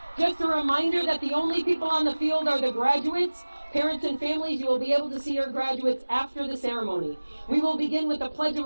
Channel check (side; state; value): both; inverted; correlation -1.00